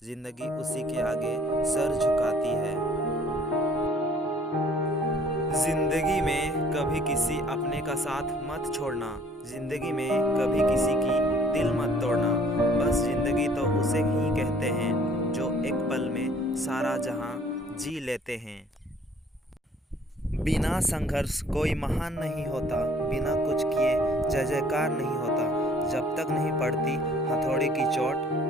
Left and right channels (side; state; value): both; normal; correlation 0.57